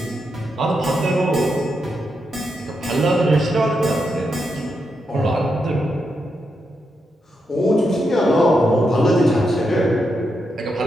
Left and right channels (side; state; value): both; normal; correlation 0.84